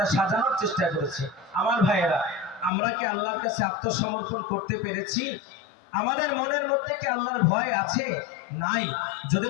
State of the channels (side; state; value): right; drops out; at 2.7 s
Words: সাজানোর চেষ্টা করেছি। আমার ভাইয়েরা, আমরা কি আল্লাহর কাছে আত্মসমর্পণ করতে পেরেছি? আমাদের মনের মধ্যে কি আল্লাহর ভয় আছে? নাই। যদি